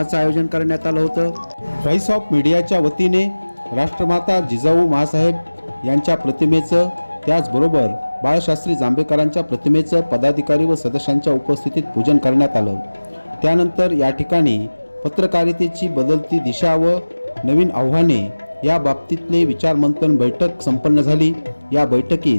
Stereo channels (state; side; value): inverted; both; correlation -1.00